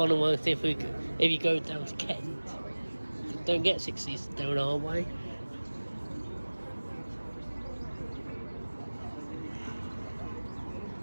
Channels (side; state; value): both; inverted; correlation -1.00